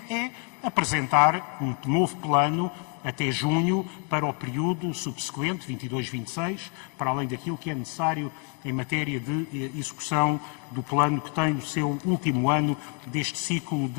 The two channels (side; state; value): right; quieter; 37.8 dB